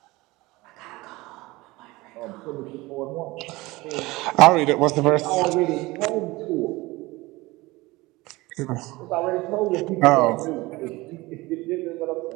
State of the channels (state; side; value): quieter; left; 21.1 dB